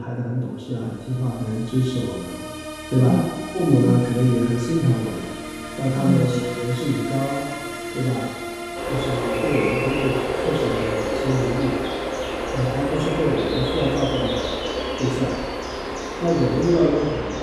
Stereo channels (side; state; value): both; identical; correlation 1.00